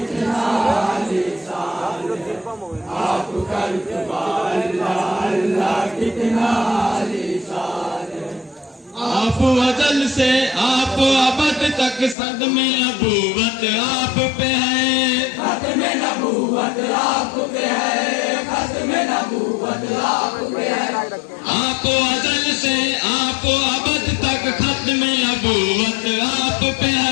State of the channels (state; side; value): drops out; right; at 12.2 s